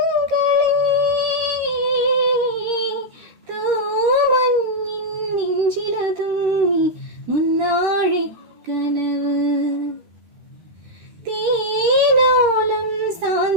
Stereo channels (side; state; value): left; late; 13 ms